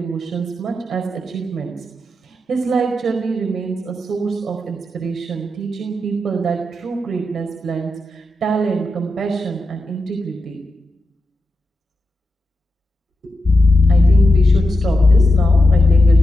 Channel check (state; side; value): normal; both; correlation 0.89